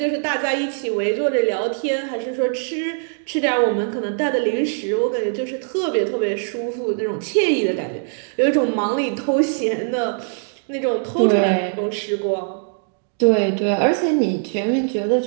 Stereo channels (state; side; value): silent; left; 65 dB below the other